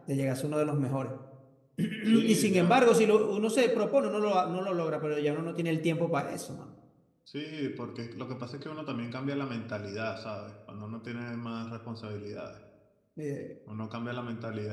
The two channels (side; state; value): both; identical; correlation 1.00